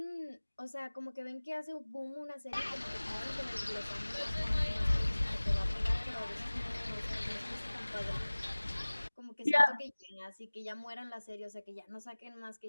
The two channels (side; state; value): both; inverted; correlation -1.00